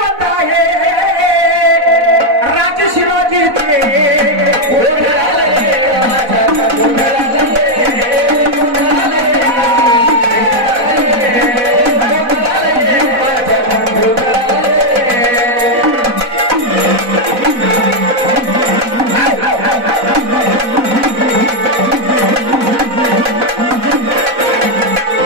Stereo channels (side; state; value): left; late; 4.0 ms